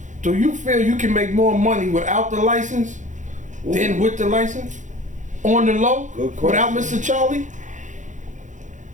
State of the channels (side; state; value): left; late; 0.36 ms